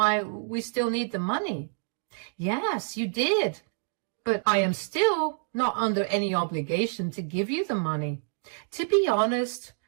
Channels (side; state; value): left; silent; digital silence